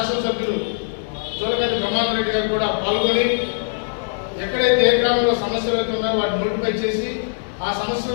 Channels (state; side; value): silent; right; digital silence